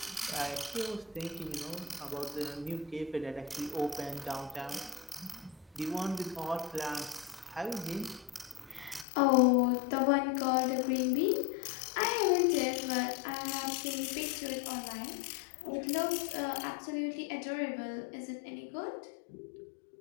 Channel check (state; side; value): drops out; right; at 9.1 s